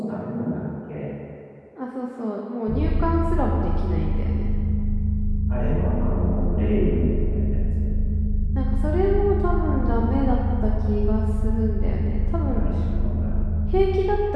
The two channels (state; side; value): identical; both; correlation 1.00